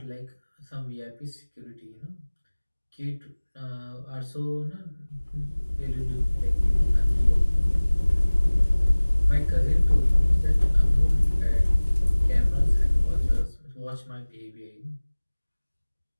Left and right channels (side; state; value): both; inverted; correlation -1.00